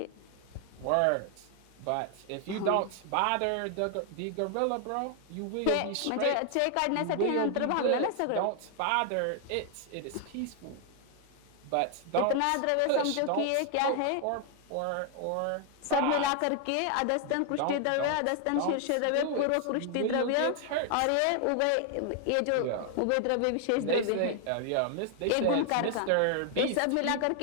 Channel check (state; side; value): different; both; correlation 0.00